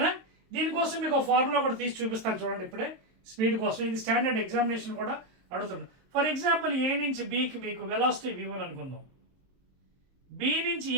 దీనికోసం మీకు ఒక ఫార్ములా కూడా తీసి చూపిస్తాను చూడండి ఇప్పుడే, స్పీడ్ కోసం. ఇది స్టాండర్డ్ ఎగ్జామినేషన్ కూడా అడుగుతున్నాను. ఫర్ ఎగ్జాంపుల్ ఏ నుంచి బీకి మీకు వెలాసిటీ v1 అనుకుందాం, బి నుంచి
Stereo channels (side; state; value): left; late; 23 ms